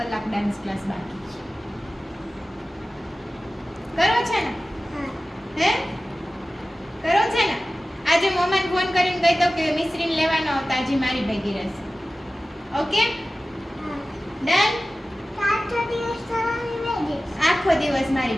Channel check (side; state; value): both; normal; correlation 0.96